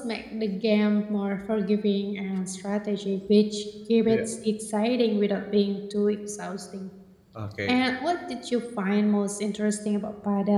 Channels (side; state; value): both; identical; correlation 1.00